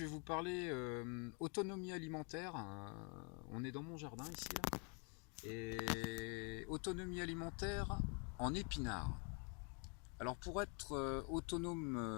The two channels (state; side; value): quieter; right; 36.1 dB